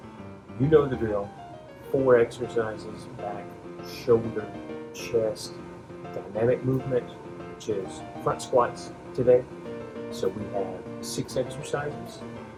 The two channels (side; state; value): both; identical; correlation 1.00